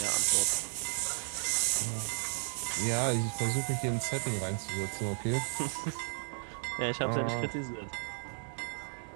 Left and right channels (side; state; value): left; silent; 55 dB below the other